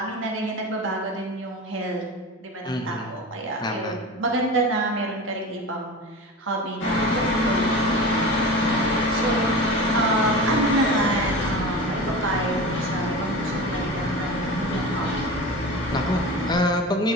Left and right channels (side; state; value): both; normal; correlation 0.31